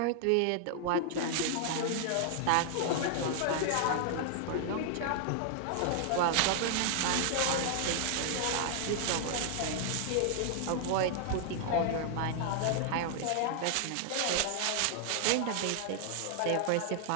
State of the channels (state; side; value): different; both; correlation 0.00